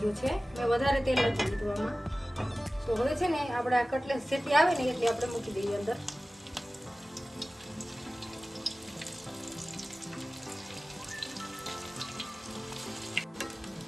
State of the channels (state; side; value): normal; both; correlation 0.97